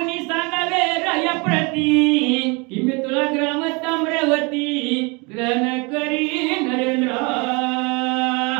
सांगावे राया प्रती की मी तुला ग्राम ताम्रवती ग्रहण करी नरेंद्र.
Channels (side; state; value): left; quieter; 29.3 dB